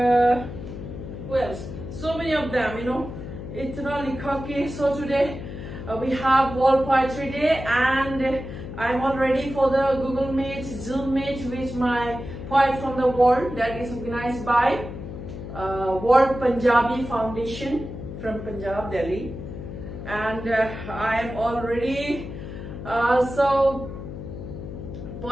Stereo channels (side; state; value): left; noise; hum, 9 dB below the sound